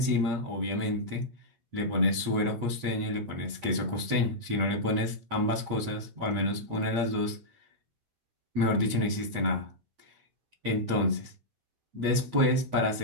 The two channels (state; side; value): late; left; 8.5 ms